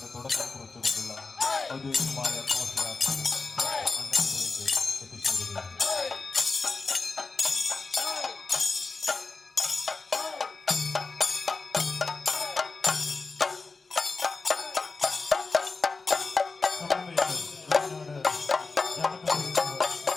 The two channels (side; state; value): right; quieter; 4.1 dB